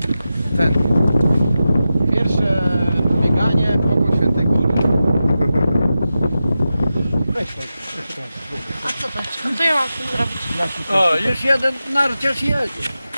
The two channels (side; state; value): both; inverted; correlation -0.92